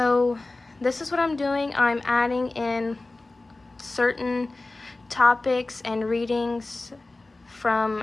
this is what I'm doing. I'm adding in certain topics and readings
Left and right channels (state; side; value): quieter; right; 3.1 dB